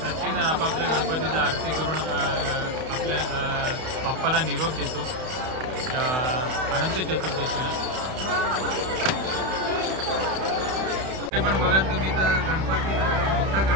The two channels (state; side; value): late; left; 31 ms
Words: आपापल्या गणपतीचा आरती करून आपल्या बाप्पाला निरोप देतो या अनंत चतुर्दशीला. ते पण बघाल तुम्ही तर गणपती मोठा